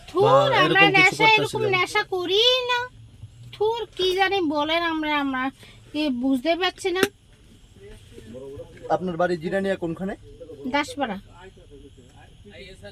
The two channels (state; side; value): identical; both; correlation 1.00